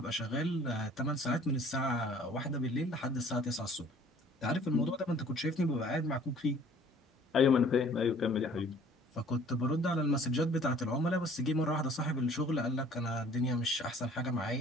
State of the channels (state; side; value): normal; both; correlation 0.53